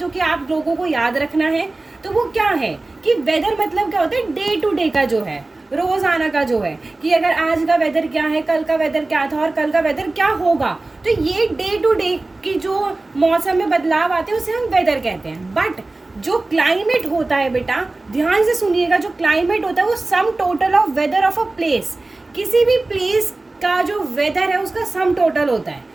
कि आप लोगों को याद रखना है. तो वो क्या है कि वेदर मतलब क्या होता है, डे टू डे का जो है, रोजाना का जो है, कि अगर आज का वेदर क्या है, कल का वेदर क्या था और कल का वेदर क्या होगा. तो ये डे टू डे की जो मौसम में बदलाव आते हैं उसे हम वेदर कहते हैं. बट जो क्लाइमेट होता है बेटा, ध्यान से सुनिएगा, जो क्लाइमेट होता है वो sum total of weather of a place. किसी भी प्लेस का जो वेदर है उसका सम टोटल होता है.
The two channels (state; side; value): quieter; left; 3.1 dB